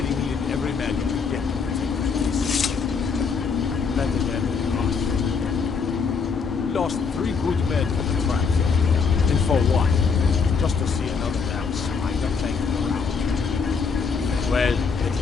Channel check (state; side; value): quieter; right; 5.4 dB